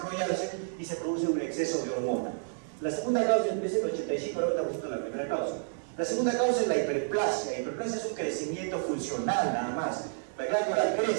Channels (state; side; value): silent; left; digital silence